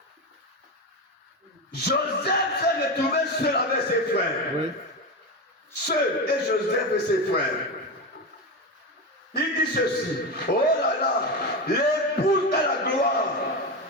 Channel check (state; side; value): normal; both; correlation 0.18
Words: Joseph s'est retrouvé seul avec ses frères. Oui. Seul et Joseph et ses frères. Il dit ceci. Oh là là, l'épouse de la gloire.